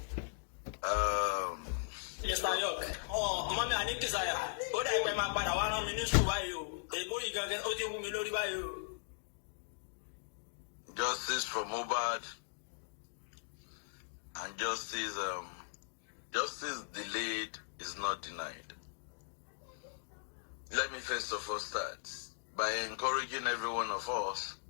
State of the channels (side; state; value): right; silent; digital silence